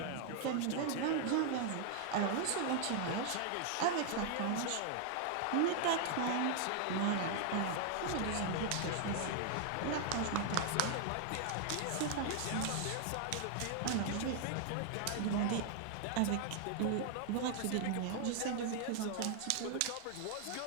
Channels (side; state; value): both; different; correlation 0.00